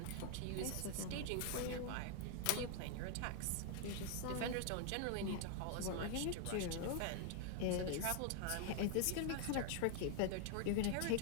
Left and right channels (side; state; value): both; different; correlation 0.00